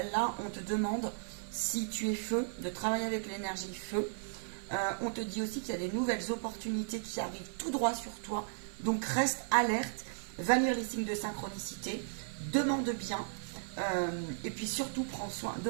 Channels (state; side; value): silent; left; 54 dB below the other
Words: là, on te demande, si tu es feu, de travailler avec l'énergie feu. On te dit aussi qu'il y a des nouvelles opportunités qui arrivent tout droit sur toi. Donc, reste alerte, va lire les signes de synchronicité, demande bien. Et puis, surtout, prends soin,